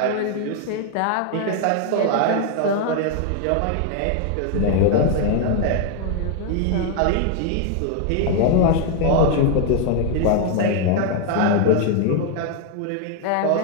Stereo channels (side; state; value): both; different; correlation 0.00